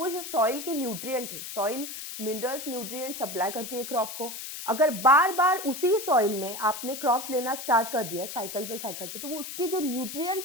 जो सॉइल के न्यूट्रिएंट है, सॉइल मिनरल्स न्यूट्रिएंट सप्लाई करती है क्रॉप को, अगर बार बार उसी सॉइल में आपने क्रॉप्स लेना स्टार्ट कर दिया साइकिल पे, तो वो उसके जो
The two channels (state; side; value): noise; left; hiss, 9 dB below the sound